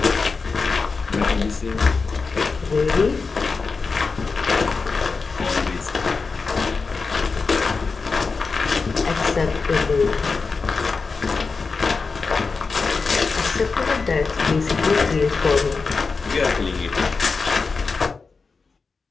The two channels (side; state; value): right; quieter; 4.6 dB